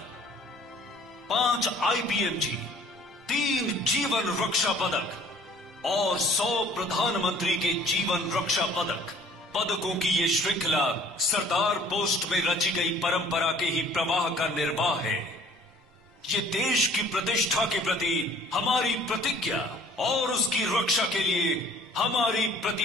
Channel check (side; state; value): both; normal; correlation 0.54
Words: 5 आईपीएमजी, 3 जीवन रक्षा पदक और 100 प्रधानमंत्री के जीवन रक्षा पदक। पदकों की ये श्रृंखला सरदार पोस्ट में रची गई परंपरा के ही प्रवाह का निर्वाह है। ये देश की प्रतिष्ठा के प्रति हमारी प्रतिज्ञा और उसकी रक्षा के लिए हमारी